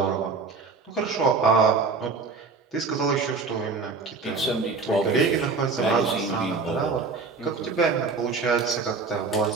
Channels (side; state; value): left; quieter; 4.4 dB